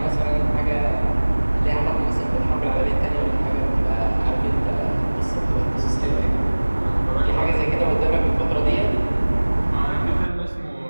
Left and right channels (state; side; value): inverted; both; correlation -1.00